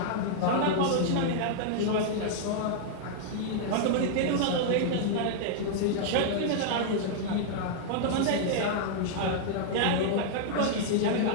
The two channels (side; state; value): both; different; correlation -0.01